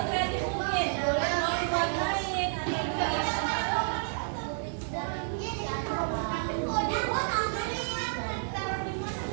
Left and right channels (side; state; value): left; silent; digital silence